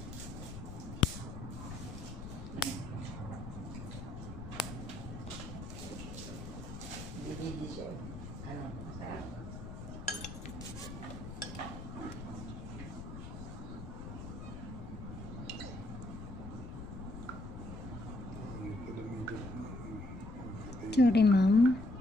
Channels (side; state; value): left; noise; rumble, 9 dB below the sound